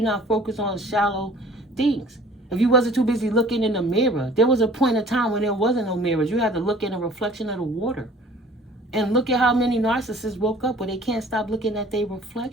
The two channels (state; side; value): normal; both; correlation 0.50